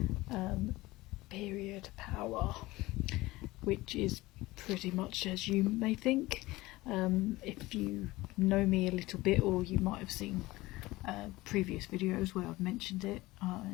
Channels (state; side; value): quieter; right; 19.5 dB